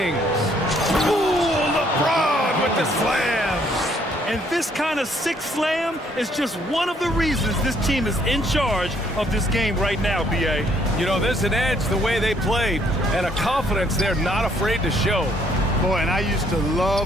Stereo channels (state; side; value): normal; both; correlation 0.67